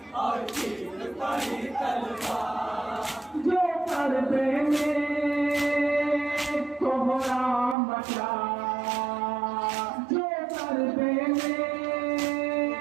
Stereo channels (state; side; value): drops out; left; at 7.8 s